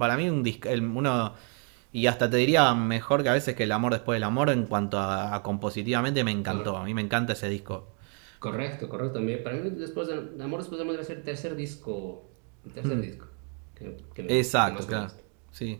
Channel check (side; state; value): left; quieter; 39.3 dB